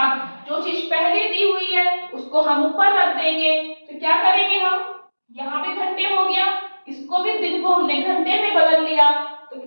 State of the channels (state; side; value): inverted; both; correlation -1.00